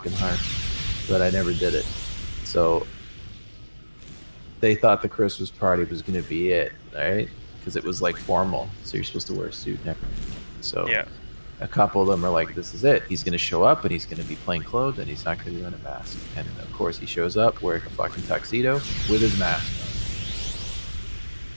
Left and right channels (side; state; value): both; inverted; correlation -1.00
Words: hard, but I never did it. So they thought the Christmas party was gonna be it, right? Because it was like formal, so you're supposed to wear a suit and everything. So Yeah. a couple of them are like, "This is it. He's gonna show up and he's gonna be plain clothed and he's not gonna be wearing a mask." And of course, he shows up wearing a fucking tuxedo with his mask on.